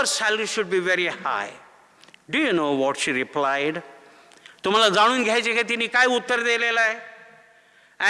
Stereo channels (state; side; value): identical; both; correlation 1.00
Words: salary should be very high. Do you know what she replied? तुम्हाला जाणून घ्यायचे का तिने काय उत्तर दिलेलं आहे?